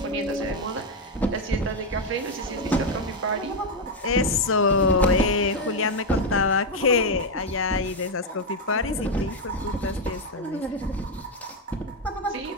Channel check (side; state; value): both; normal; correlation 0.05